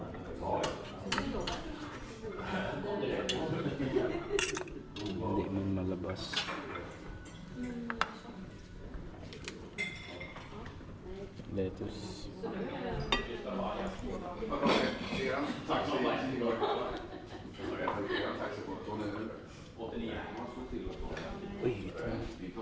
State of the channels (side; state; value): both; identical; correlation 1.00